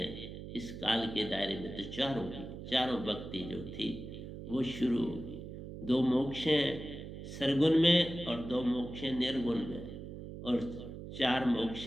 इस काल के दायरे में। तो चारों भक्ति जो थी वो शुरू होगी। 2 मोक्ष हैं सरगुण में और 2 मोक्ष हैं निर्गुण में, और 4 मोक्ष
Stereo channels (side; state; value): right; noise; hum, 10 dB below the sound